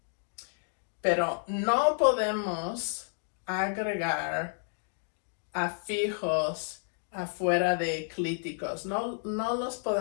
Pero no podemos agregar afijos afuera de clíticos. No los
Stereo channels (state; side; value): silent; right; 57 dB below the other